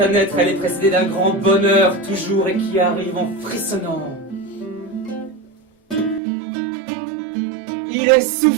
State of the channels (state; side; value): drops out; left; at 6.2 s